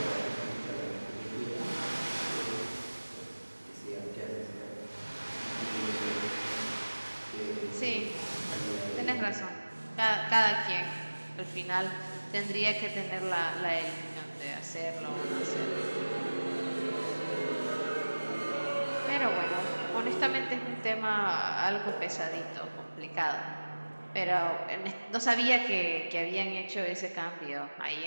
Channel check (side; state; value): both; inverted; correlation -1.00